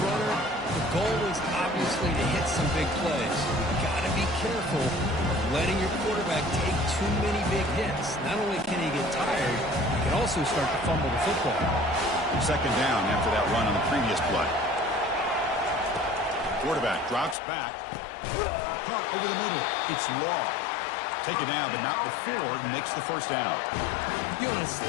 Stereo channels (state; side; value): drops out; right; at 17.4 s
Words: runner, the goal is obviously to hit some big plays. You got to be careful of letting your quarterback take too many big hits. Not only can he get tired, he can also start to fumble the football. Second down after that run on the previous play. Quarterback drops back. Caught over the middle. It's Law. Take it down, but not before he makes the first down. You know, on a